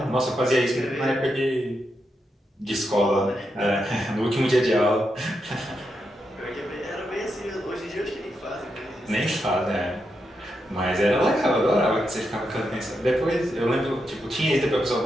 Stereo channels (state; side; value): normal; both; correlation 0.84